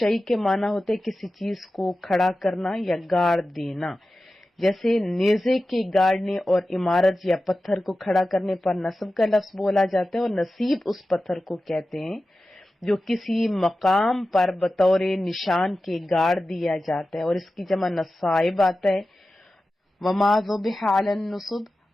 کے معنی ہوتے کسی چیز کو کھڑا کرنا یا گاڑ دینا، جیسے نیزے کے گاڑنے اور عمارت یا پتھر کو کھڑا کرنے پر نصب کا لفظ بولا جاتا ہے، اور نصیب اس پتھر کو کہتے ہیں جو کسی مقام پر بطور نشان کے گاڑ دیا جاتا ہے، اور اس کی جمع نصائب آتا ہے۔ وما ذبح علی النصب،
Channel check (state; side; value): normal; both; correlation 0.94